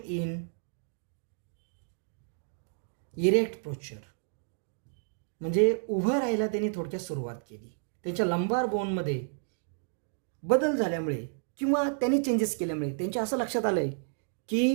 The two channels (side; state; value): left; silent; digital silence